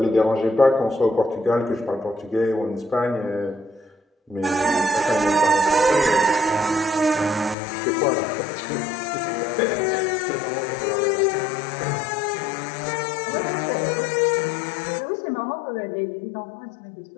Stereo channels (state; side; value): drops out; right; at 7.6 s